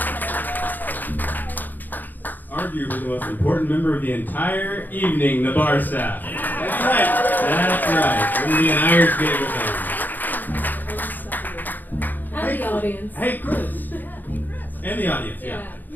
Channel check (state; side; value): late; right; 0.086 ms